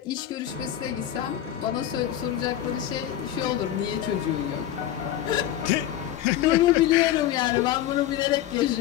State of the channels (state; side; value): quieter; right; 12.0 dB